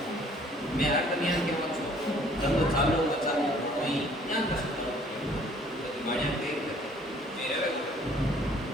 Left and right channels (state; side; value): normal; both; correlation 0.57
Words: मैं हर कन्या के पास धंधो चालू बचालो वहीं यहाँ कर सकते हो बढ़िया पे मेरे